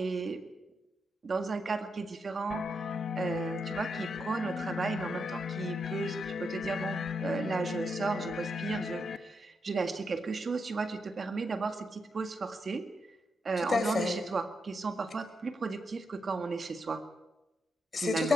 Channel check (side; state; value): both; normal; correlation 0.82